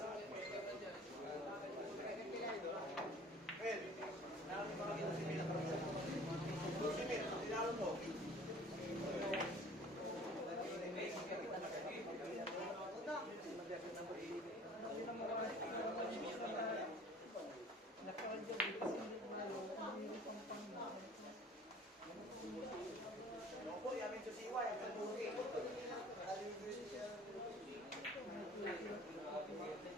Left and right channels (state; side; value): normal; both; correlation 0.49